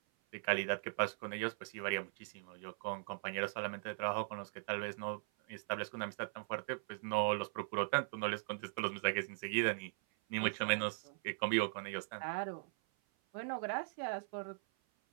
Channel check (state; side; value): silent; left; 51 dB below the other